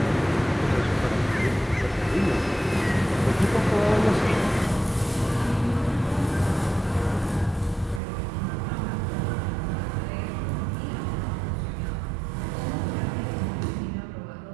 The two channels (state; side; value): drops out; left; at 8.0 s